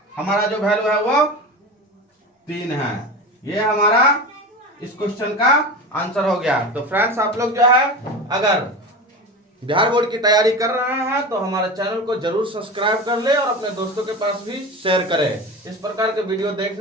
हमारा जो वैल्यू है वो 3 है। ये हमारा इस क्वेश्चन का आंसर हो गया। तो फ्रेंड्स, आप लोग जो है अगर बिहार बोर्ड की तैयारी कर रहे हैं तो हमारे चैनल को जरूर सब्सक्राइब कर ले और अपने दोस्तों के पास भी शेयर करें। इस प्रकार के वीडियो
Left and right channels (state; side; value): normal; both; correlation 0.28